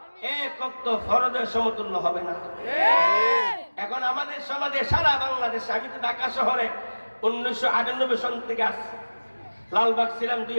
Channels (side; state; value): both; inverted; correlation -1.00